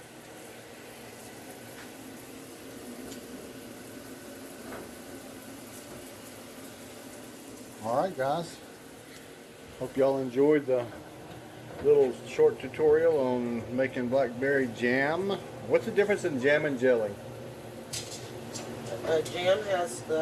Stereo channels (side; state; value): both; identical; correlation 1.00